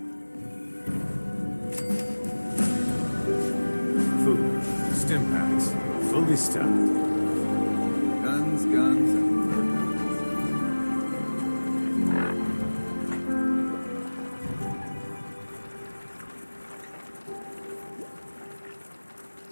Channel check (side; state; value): both; inverted; correlation -1.00